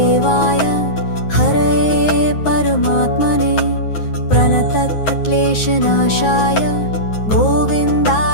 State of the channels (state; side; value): late; right; 9.5 ms